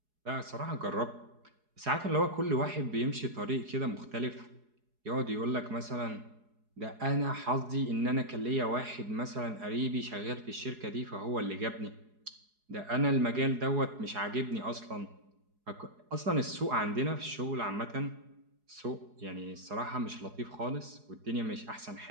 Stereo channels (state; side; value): late; left; 4.8 ms